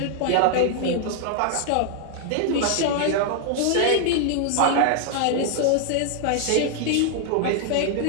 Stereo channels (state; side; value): different; both; correlation 0.00